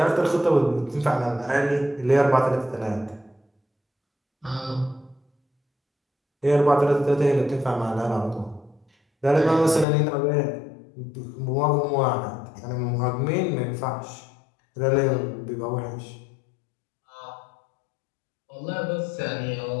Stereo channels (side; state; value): right; drops out; at 9.9 s